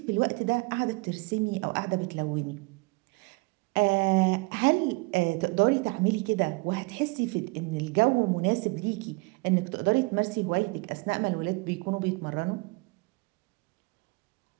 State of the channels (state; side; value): quieter; left; 27.8 dB